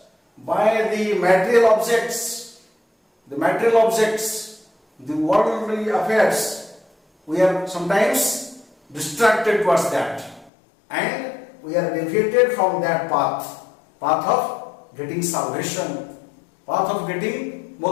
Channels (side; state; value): right; drops out; at 10.5 s